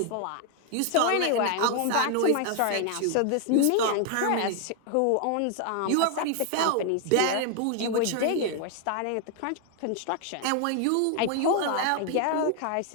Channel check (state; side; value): different; both; correlation 0.00